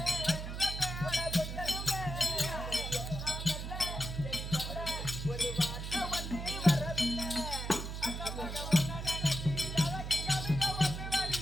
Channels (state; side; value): noise; right; hum, 6 dB below the sound